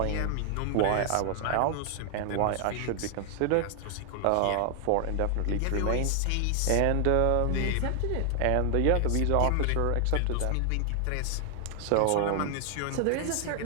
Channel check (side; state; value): both; different; correlation 0.00